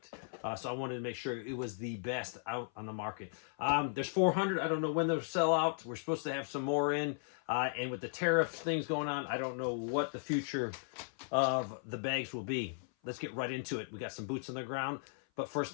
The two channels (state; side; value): silent; right; 54 dB below the other